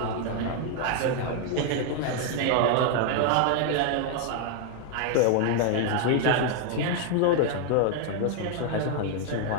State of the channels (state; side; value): different; both; correlation 0.00